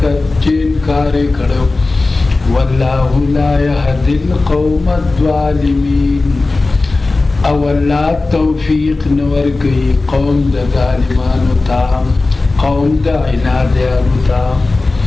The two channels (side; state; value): right; quieter; 3.4 dB